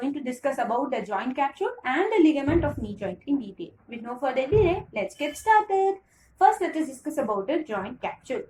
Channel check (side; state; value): both; identical; correlation 1.00